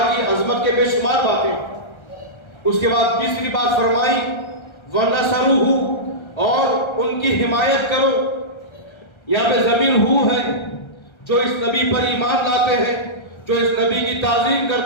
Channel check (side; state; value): right; late; 1.3 ms